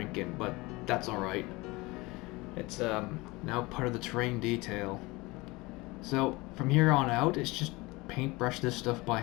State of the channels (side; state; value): right; quieter; 23.0 dB